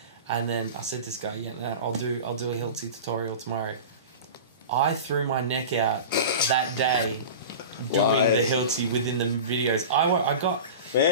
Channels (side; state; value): both; inverted; correlation -0.32